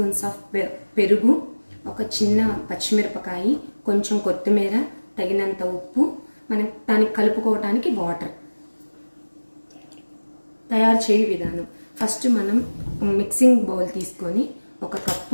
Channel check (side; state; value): both; inverted; correlation -1.00